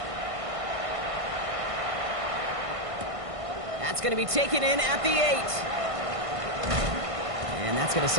That's going to be taken in at the 8. And that's going to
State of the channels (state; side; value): late; left; 1.5 ms